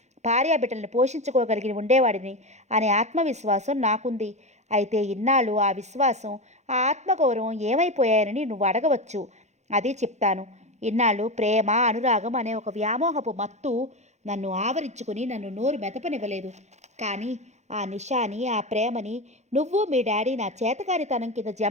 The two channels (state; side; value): late; left; 0.33 ms